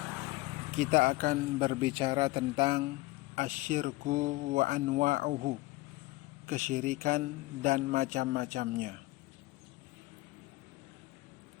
kita akan berbicara tentang asyirku wa anwa'uhu, kesyirikan dan macam-macamnya.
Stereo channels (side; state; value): right; quieter; 20.3 dB